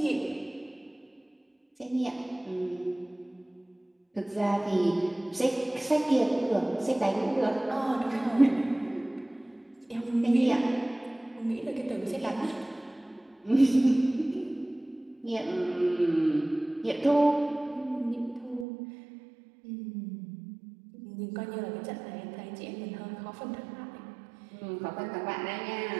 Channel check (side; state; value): left; drops out; at 18.7 s